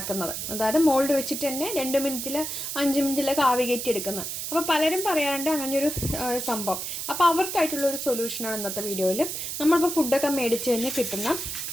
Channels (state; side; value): noise; right; hiss, 5 dB below the sound